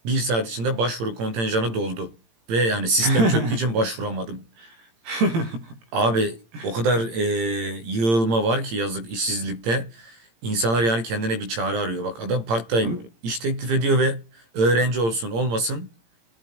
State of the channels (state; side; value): late; left; 18 ms